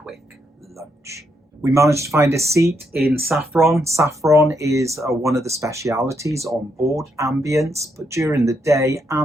lunch. We managed to find a seat in saffron. Saffron is one of the specialities on board Ambience, but during the day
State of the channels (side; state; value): both; normal; correlation 0.78